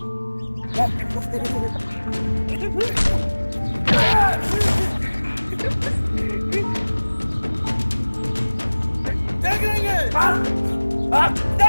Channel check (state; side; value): inverted; both; correlation -1.00